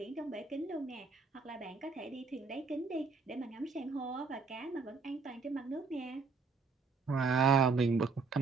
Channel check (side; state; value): left; quieter; 4.5 dB